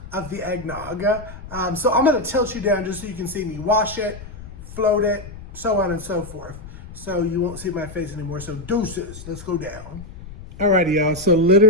of the eggnog. So I'm gonna tilt you down just so you can see me wash it, float it, so on and so forth. So you won't see my face anymore, so deuces, let's go down. Alrighty, y'all, so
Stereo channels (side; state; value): left; noise; rumble, 14 dB below the sound